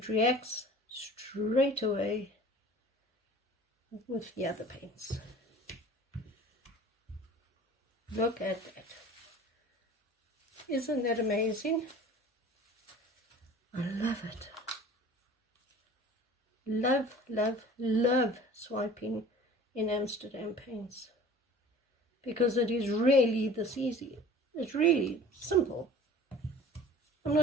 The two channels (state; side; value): normal; both; correlation 0.44